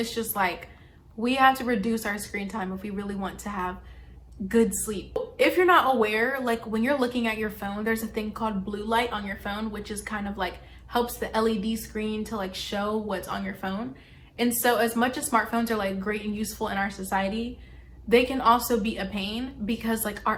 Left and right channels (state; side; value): identical; both; correlation 1.00